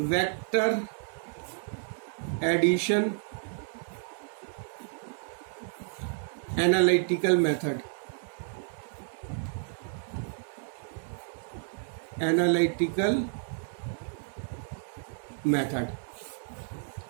addition analytical method. Analytical method.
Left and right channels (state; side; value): silent; left; 57 dB below the other